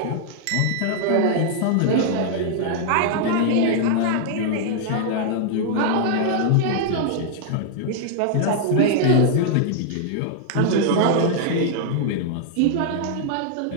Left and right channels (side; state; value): both; different; correlation 0.00